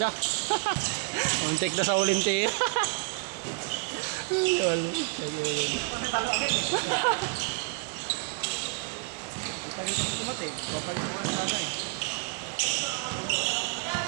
Muntik na sa Olympic.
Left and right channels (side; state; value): left; quieter; 34.1 dB